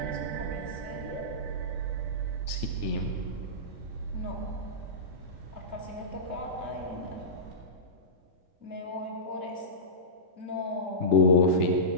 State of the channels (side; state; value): left; late; 3.4 ms